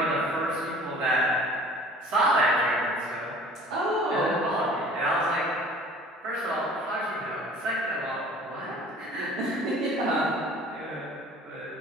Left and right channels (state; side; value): normal; both; correlation 0.47